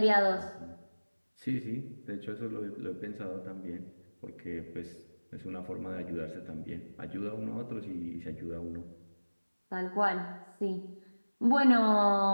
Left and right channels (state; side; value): inverted; both; correlation -1.00